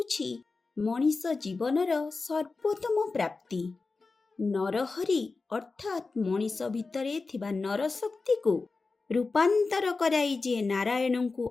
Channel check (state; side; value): quieter; right; 4.0 dB